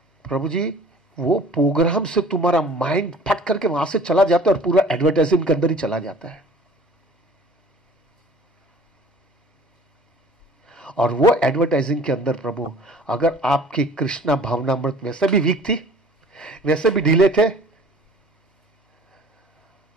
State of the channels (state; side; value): normal; both; correlation 0.49